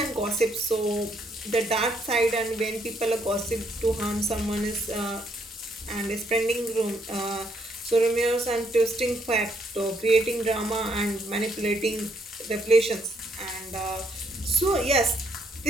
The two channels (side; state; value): both; normal; correlation 0.72